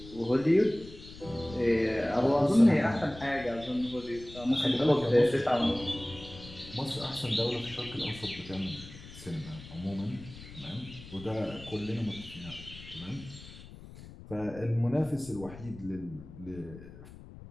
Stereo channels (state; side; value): noise; left; rumble, 16 dB below the sound